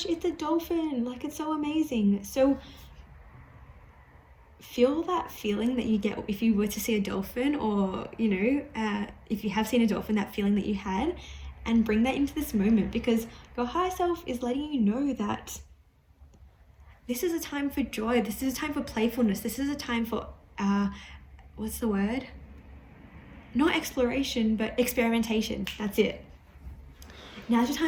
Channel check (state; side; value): identical; both; correlation 1.00